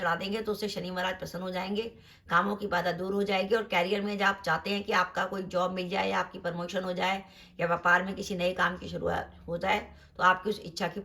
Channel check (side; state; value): both; identical; correlation 1.00